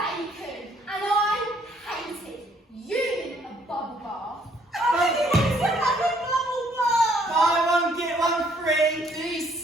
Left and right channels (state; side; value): normal; both; correlation 0.65